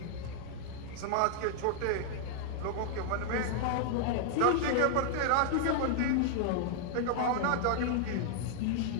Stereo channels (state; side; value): different; both; correlation -0.01